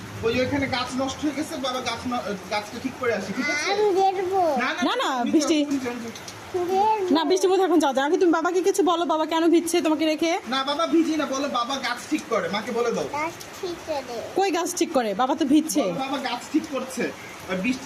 ওই যে ওখানে গাছ নষ্ট হয়ে গেছে, বাবা গাছটা ঠিক করে আসি, ঠিক আছে? না, না, বৃষ্টি। না, বৃষ্টির মধ্যে এখন যাও। আগে তুমি বাবাকে কিছু বলো, বাবা কেন ভিজছে তোমাকে রেখে। না বাবা ভিজি না, বলো বাবা গাছ ঠিক করে, মাকে বলে দাও। কই গাছ ঠিক করে? বাবা তো ভিজছে। বলো বাবা গাছ ঠিক করছে, আর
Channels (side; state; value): both; identical; correlation 1.00